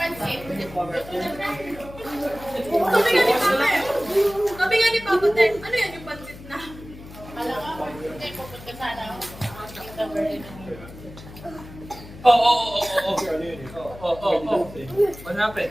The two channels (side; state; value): left; noise; hum, 16 dB below the sound